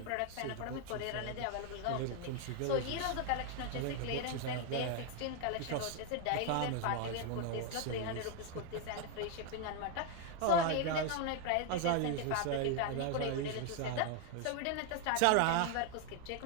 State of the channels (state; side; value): different; both; correlation 0.01